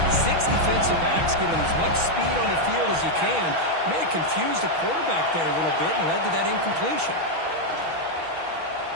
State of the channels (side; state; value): left; late; 6.2 ms